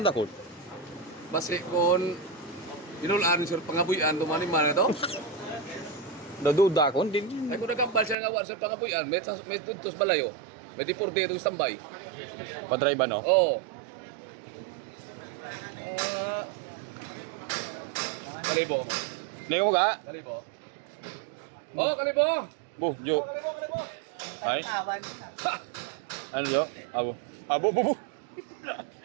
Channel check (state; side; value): drops out; left; at 8.2 s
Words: Dakot. Basi kung inulaan sur pangabuyan tumani man ito. Naduda ko din. Ay kung nagambal siya nga war sur pangabuyan, may tuntos balayo. May deporte itong standby. Pa-drive ba no? Oo. Kalibo mo. Ningo mo ga? Kalibo. Oh, kalibo. Bu, jo. Ay. Ano jo? Abo. Abo bu.